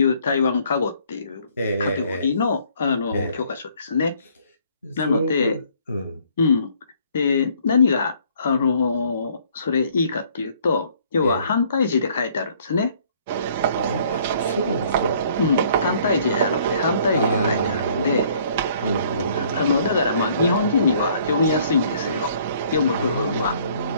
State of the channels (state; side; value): inverted; both; correlation -0.61